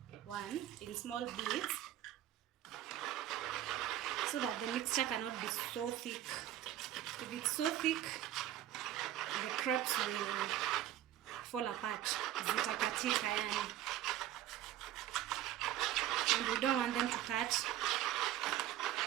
1 in small bits so that the mixture cannot be so thick. If it's so thick, the crepes will fall apart. Zitakatika yani. And we don't want them to cut.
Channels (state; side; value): quieter; left; 12.6 dB